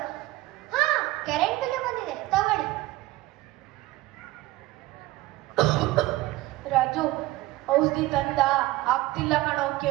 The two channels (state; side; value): quieter; left; 17.9 dB